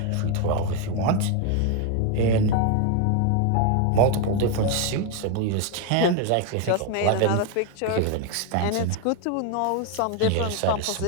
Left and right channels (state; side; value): different; both; correlation 0.01